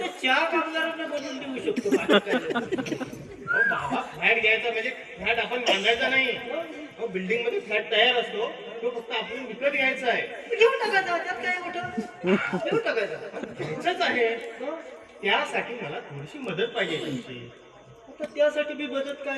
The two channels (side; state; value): both; identical; correlation 1.00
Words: चहा कामगारांना बनवून देऊ शकतो बाकी काय नाही. अहो बाबा फ्लॅट घ्यायचा म्हणजे फ्लॅट आपण बांधायचा नाही अहो बिल्डिंग मध्ये फ्लॅट तयार असतो तो फक्त आपण विकत घ्यायचा आहे घेऊन टाकायचा त्यात काय मोठं घेऊन टाकायचा घ्यायचंच आहे हं? त्यासाठी मला थोडीशी मदत पाहिजे तुमची आता त्यासाठी मी मदत